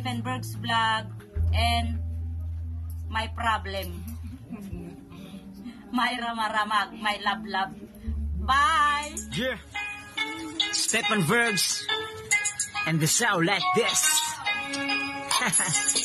Berg's vlog and my problem. My ramaramag, my love. Bye! Yeah! Stephen Bergs and the sound like this.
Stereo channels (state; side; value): identical; both; correlation 1.00